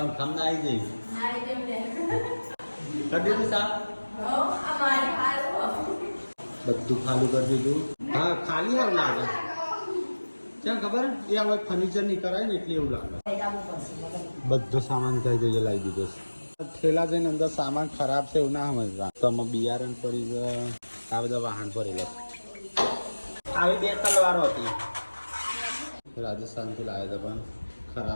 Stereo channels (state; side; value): inverted; both; correlation -1.00